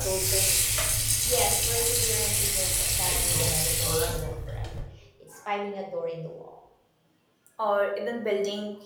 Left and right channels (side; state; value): both; identical; correlation 1.00